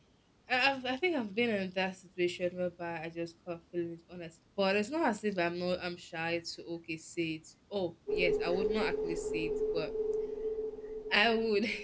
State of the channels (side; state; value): both; identical; correlation 1.00